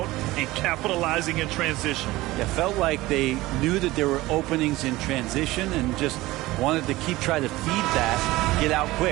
and capitalizing in transition. It felt like they knew that there were openings in transition and just wanted to keep trying to feed that, get out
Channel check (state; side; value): quieter; left; 18.7 dB